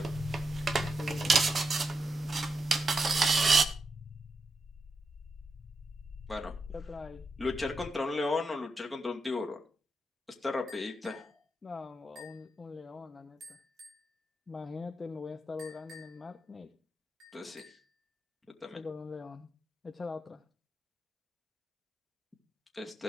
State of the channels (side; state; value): both; normal; correlation 0.85